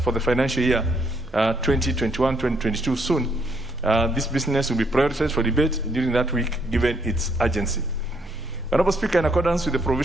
the financial year 2021-2022 soon. This business will be prioritized for debate during that week, given its urgency. Honorable Speaker, in accordance with the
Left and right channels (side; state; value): both; normal; correlation 0.71